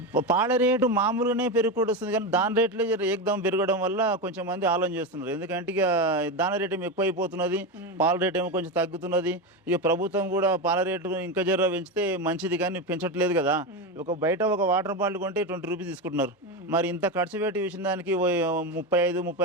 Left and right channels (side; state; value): both; normal; correlation 0.15